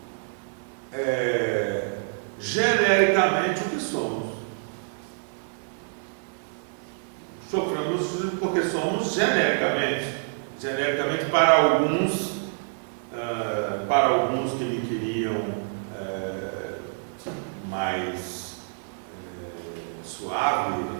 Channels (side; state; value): left; silent; digital silence